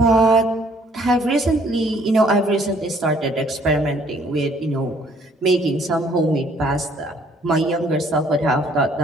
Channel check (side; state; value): both; normal; correlation 0.61